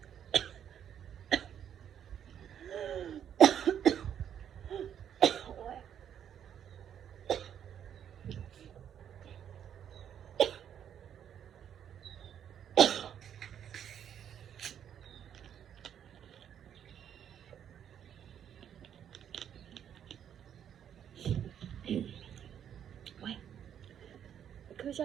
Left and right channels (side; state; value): left; quieter; 9.2 dB